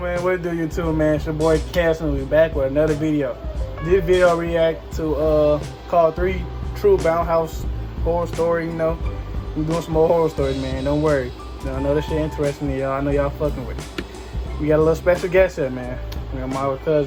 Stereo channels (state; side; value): identical; both; correlation 1.00